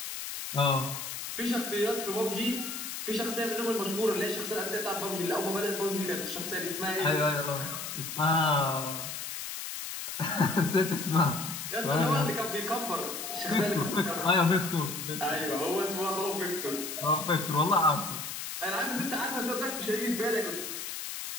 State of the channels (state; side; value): noise; left; hiss, 6 dB below the sound